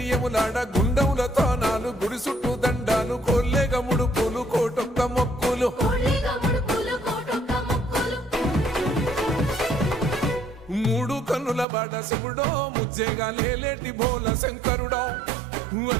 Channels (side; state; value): left; drops out; at 11.7 s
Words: యములాడ గుండములతో నాలు గుడి చుట్టూ దండాలు కోల్లేగ ముడుపులు కోటొక్క మొక్కులు మూడు కన్నుల వాడ శివుడో ముజ్జేగా లేలేటి బోల శంకరుడో